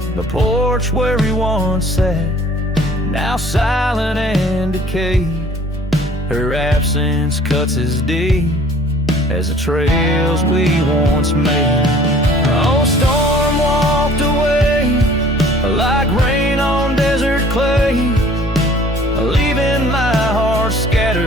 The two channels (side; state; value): both; normal; correlation 0.52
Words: The porch where we once sat, now silent and decayed. Her absence cuts as deep as the trails we once made. Oh, storm walked away like rain on desert clay, leaving my heart